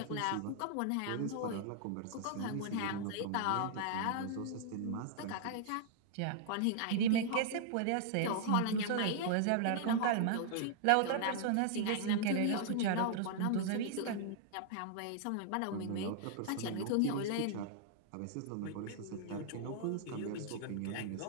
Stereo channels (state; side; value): different; both; correlation -0.01